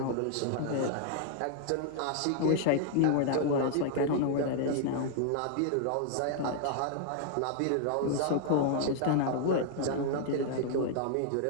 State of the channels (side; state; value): both; different; correlation -0.01